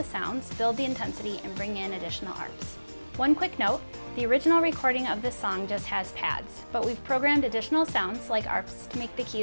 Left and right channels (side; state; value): both; inverted; correlation -1.00